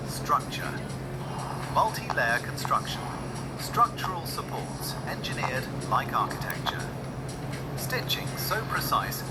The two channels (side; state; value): both; identical; correlation 1.00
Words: structure. Multi-layer construction. Structural supports engineered like architecture. Stitching so precise